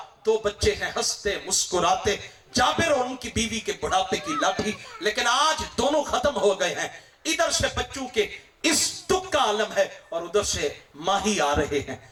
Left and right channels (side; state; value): both; identical; correlation 1.00